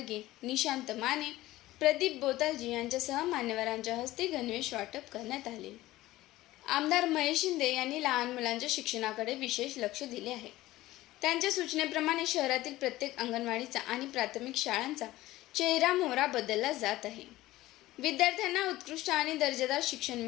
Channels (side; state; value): right; quieter; 16.9 dB